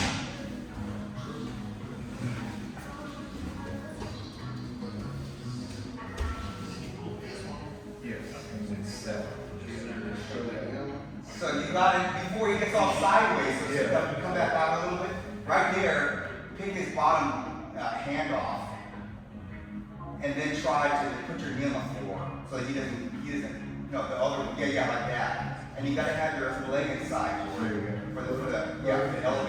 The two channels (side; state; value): both; identical; correlation 1.00